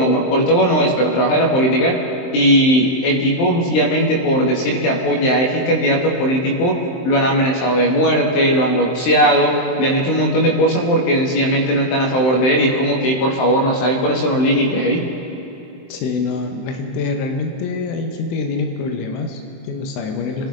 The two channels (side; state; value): right; late; 23 ms